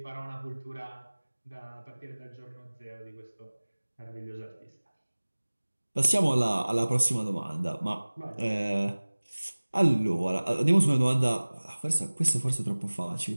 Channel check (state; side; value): inverted; both; correlation -1.00